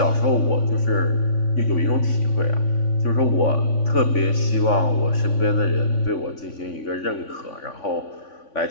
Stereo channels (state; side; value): late; right; 3.5 ms